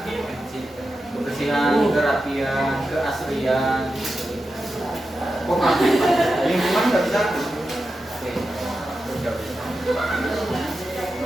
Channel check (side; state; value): both; normal; correlation 0.90